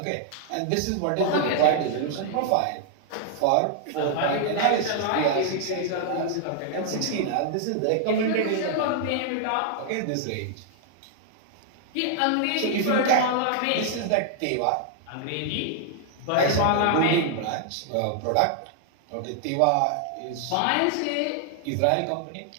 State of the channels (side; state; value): both; different; correlation -0.01